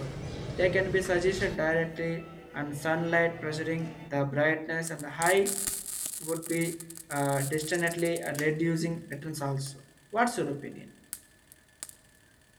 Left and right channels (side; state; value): both; identical; correlation 1.00